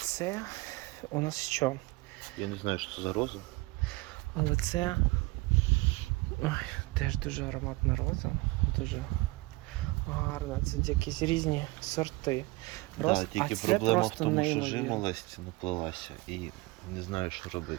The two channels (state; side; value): quieter; left; 22.8 dB